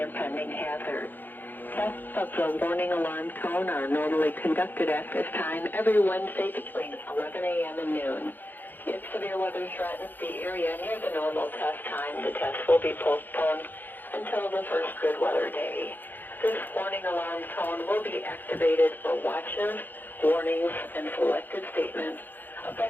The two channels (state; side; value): late; right; 0.090 ms